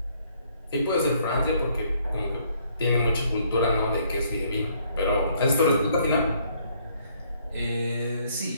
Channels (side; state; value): both; inverted; correlation -0.66